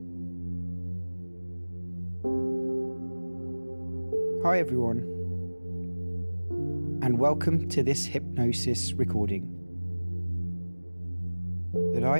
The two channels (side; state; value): both; inverted; correlation -1.00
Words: everyone, and welcome to this hypnosis recording that